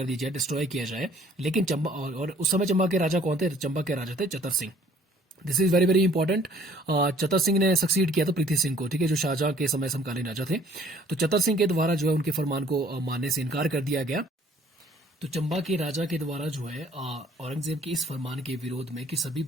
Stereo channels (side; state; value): both; normal; correlation 0.57